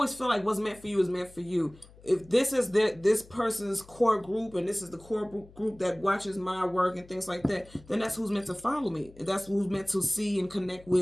feel like what's meant for you is meant for you. If this is this person's core group and this is the core group that watches my work and things like that, then that's who's meant to follow me. That's who's meant to see and connect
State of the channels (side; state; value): left; noise; hum, 23 dB below the sound